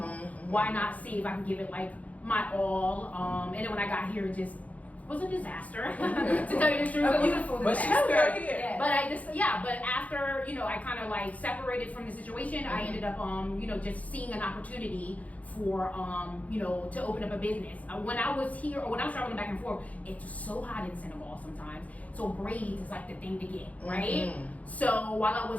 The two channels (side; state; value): right; late; 0.070 ms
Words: Why not see if I can give it like my all? And then when I got here, it just was a disaster to tell you the truth. A beautiful disaster. But she's still here. Yeah. But after I kind of like separated from the situation, I ended up just seeing an opportunity for to open up a business. When I was here, or when I was traveling back and forth, it's so hot in Senegal sometimes. So braids is like the thing to get, right? So while I